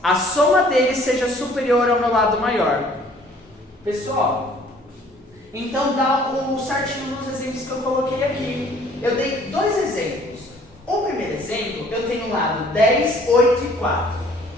a soma deles seja superior ao meu lado maior. Pessoal, então dá o certinho nos exemplos que eu coloquei aqui. Eu dei 2 exemplos. O primeiro exemplo, eu tenho o lado 10, 8 e 4,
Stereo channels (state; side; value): normal; both; correlation 0.57